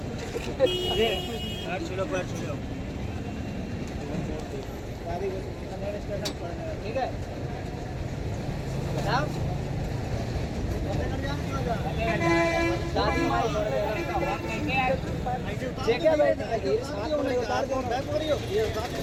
पैर छुलो, पैर छुलो। दादी को स्टेशन पर, ठीक है बताओ। दादी माई क्या बैठी उतार दो, बैक हो रही हो ये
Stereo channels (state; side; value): identical; both; correlation 1.00